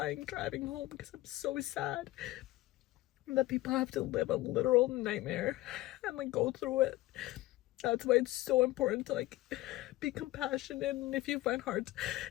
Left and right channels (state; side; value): quieter; right; 17.5 dB